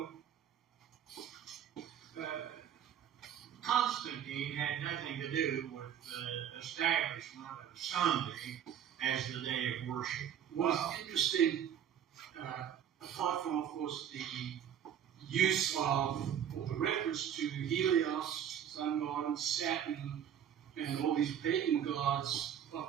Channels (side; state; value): left; quieter; 9.3 dB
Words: Constantine had nothing to do with the establishment of Sunday as the day of worship. What's interesting, apart from, of course, the use of, or the reference to Helios, sun god, and Saturn, and all these pagan gods